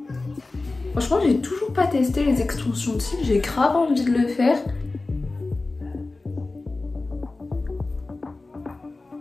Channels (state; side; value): quieter; right; 3.3 dB